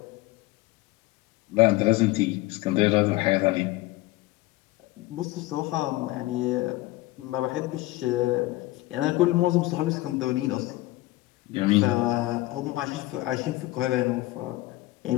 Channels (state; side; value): quieter; right; 18.9 dB